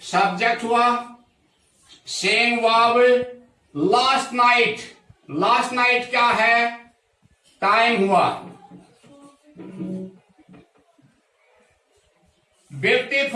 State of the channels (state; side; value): identical; both; correlation 1.00